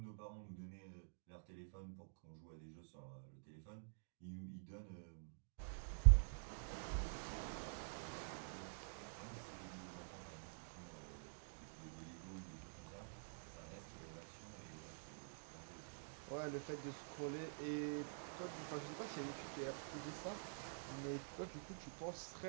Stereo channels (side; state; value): left; silent; digital silence